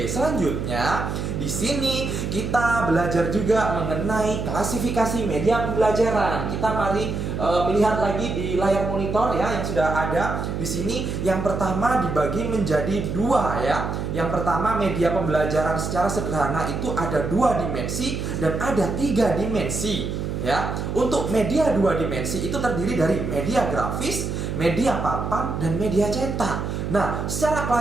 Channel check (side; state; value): right; noise; hum, 3 dB below the sound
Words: selanjutnya di sini kita belajar juga mengenai klasifikasi media pembelajaran. Kita mari melihat lagi di layar monitor ya yang sudah ada di sini. Yang pertama dibagi menjadi dua ya. Yang pertama media pembelajaran secara sederhana itu ada 2 dimensi dan ada 3 dimensi ya. Untuk media 2 dimensi itu terdiri dari media grafis, media papan, dan media cetak. Nah, secara